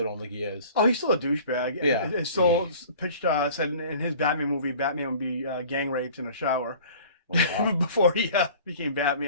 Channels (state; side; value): inverted; both; correlation -0.46